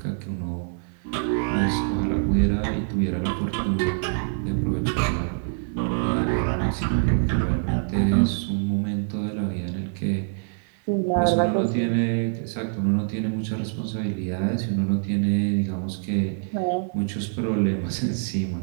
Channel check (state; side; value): silent; left; digital silence